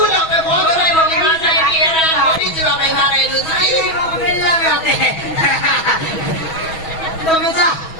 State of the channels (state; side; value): late; right; 6.2 ms